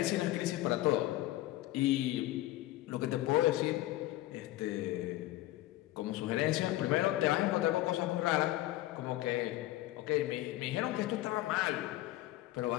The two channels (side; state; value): right; quieter; 16.1 dB